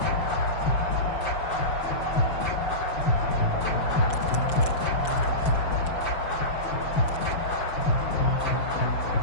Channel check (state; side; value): late; right; 5.8 ms